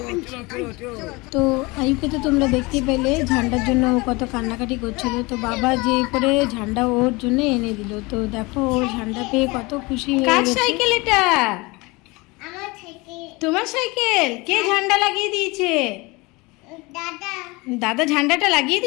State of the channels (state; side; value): quieter; right; 24.6 dB